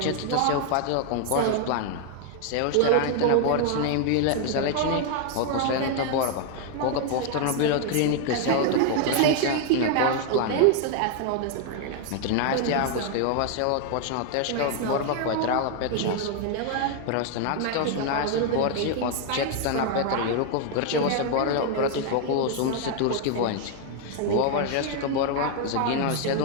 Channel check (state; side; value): different; both; correlation 0.00